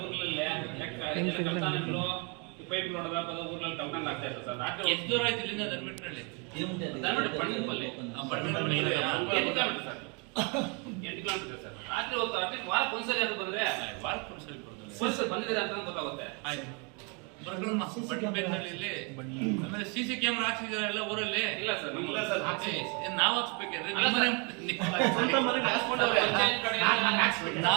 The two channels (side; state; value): left; quieter; 33.6 dB